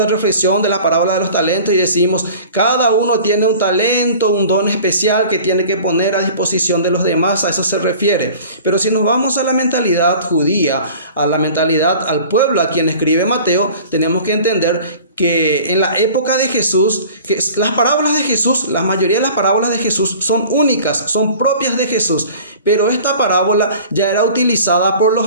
reflexión de la parábola de los talentos y decimos, cada uno tiene un talento, un don especial que tiene que poner a disposición de los demás, a eso se refiere. Pero si nos vamos a la mentalidad judía, a la mentalidad al pueblo a quien escribe Mateo, tenemos que entender que en la época de Jesús, que las parábolas de Jesús, la mayoría de las parábolas de Jesús son únicas, son propias de Jesús. Pero esta parábola ya era utilizada por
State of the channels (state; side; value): inverted; both; correlation -0.44